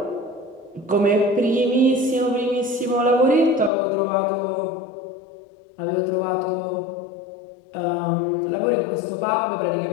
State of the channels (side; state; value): right; drops out; at 3.7 s